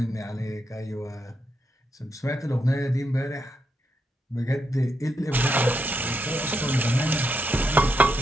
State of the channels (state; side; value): normal; both; correlation 0.82